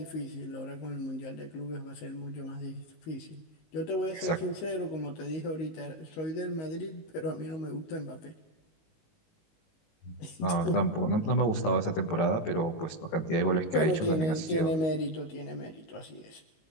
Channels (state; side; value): late; right; 18 ms